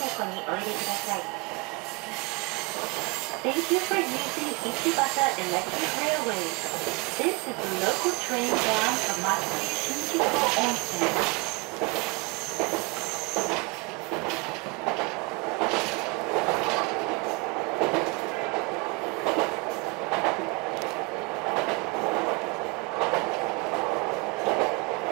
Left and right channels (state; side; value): quieter; left; 28.6 dB